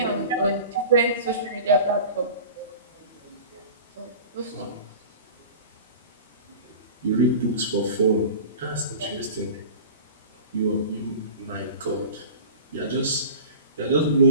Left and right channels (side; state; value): both; inverted; correlation -0.37